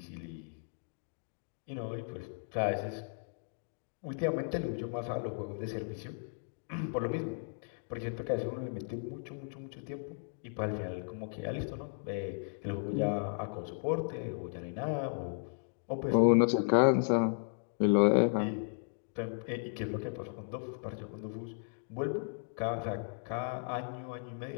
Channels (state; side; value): silent; right; digital silence